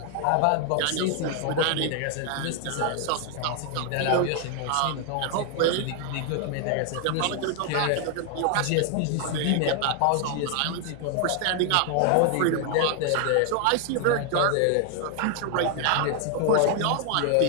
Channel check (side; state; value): both; different; correlation 0.00